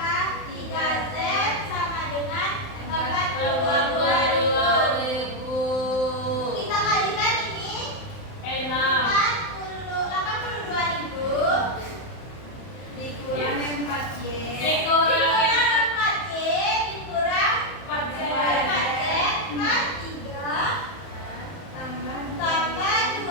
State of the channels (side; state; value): right; late; 31 ms